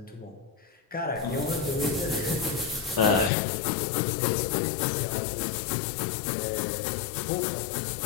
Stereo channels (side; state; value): right; drops out; at 3.3 s